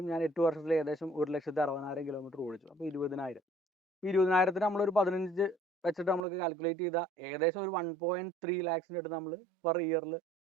ഞാൻ 8 വർഷത്തിൽ ഏകദേശം 1,60,000 കിലോമീറ്റർ ഓടിച്ചു. അപ്പോൾ 20,000 20,000 നമ്മളൊരു 15 വെച്ചിട്ട് നമ്മൾക്ക് കാൽക്കുലേറ്റ് ചെയ്താൽ ഏകദേശം ഒരു 1.3 lakhs അടുത്ത് നമ്മൾ പെർ ഇയറിൽ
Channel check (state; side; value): drops out; left; at 6.2 s